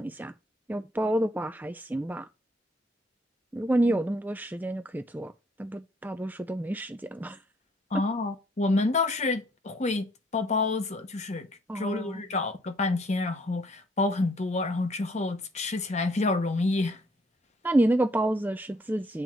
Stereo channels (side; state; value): both; normal; correlation 0.66